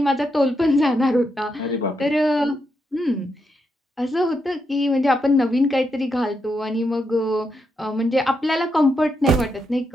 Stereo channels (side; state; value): both; normal; correlation 0.82